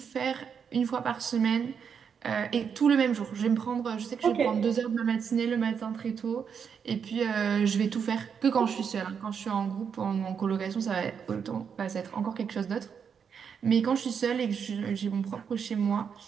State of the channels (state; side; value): quieter; left; 6.9 dB